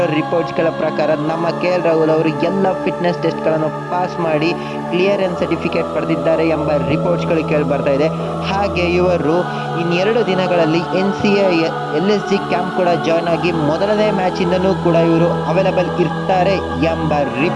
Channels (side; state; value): both; identical; correlation 1.00